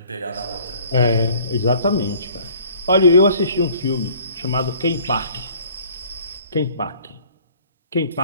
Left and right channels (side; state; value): both; inverted; correlation -0.54